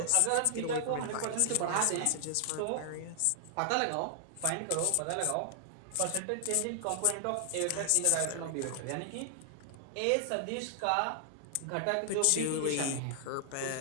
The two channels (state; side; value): different; both; correlation 0.00